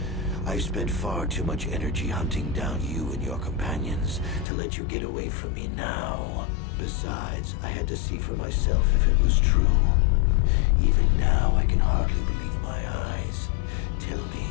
I've spent far too much energy hunting down you and your companions to let you get away from me now. Besides, I had to see for myself if it was true. Even now, I can hardly believe my eyes. Tell me,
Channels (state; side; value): drops out; right; at 4.5 s